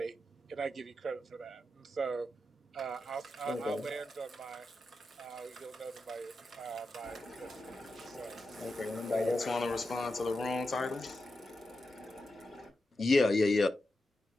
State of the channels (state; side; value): normal; both; correlation 0.89